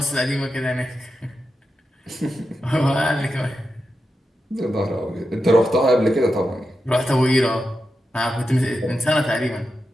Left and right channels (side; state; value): both; normal; correlation 0.89